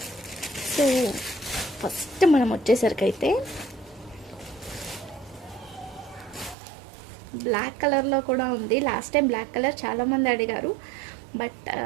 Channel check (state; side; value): drops out; left; at 6.6 s